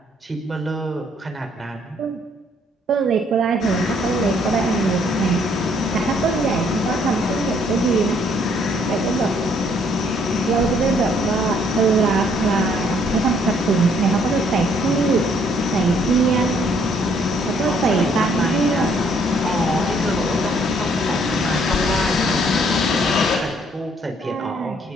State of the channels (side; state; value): both; normal; correlation 0.65